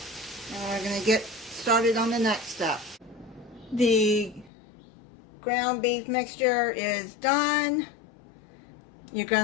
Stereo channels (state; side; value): drops out; right; at 4.5 s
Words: and we're going to get started on the next step. The ground beef mixture is done. You're